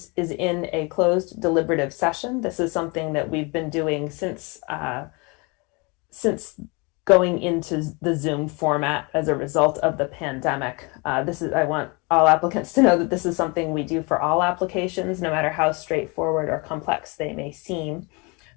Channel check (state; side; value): quieter; right; 29.3 dB